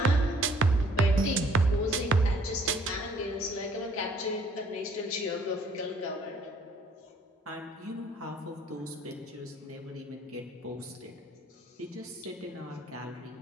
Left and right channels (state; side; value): normal; both; correlation 0.60